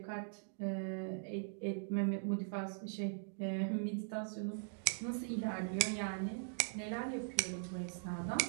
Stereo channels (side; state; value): left; silent; digital silence